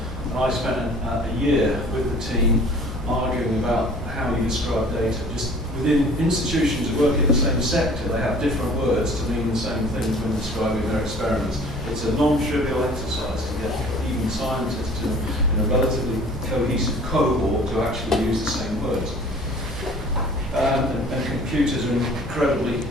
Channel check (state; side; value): normal; both; correlation 0.49